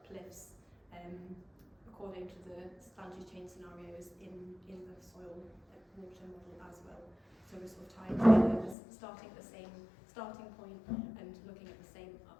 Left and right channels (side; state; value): right; drops out; at 8.8 s